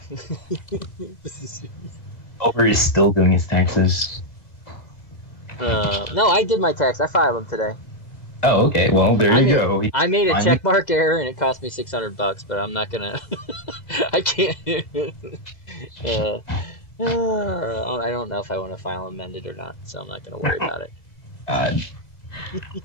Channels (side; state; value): right; late; 2.0 ms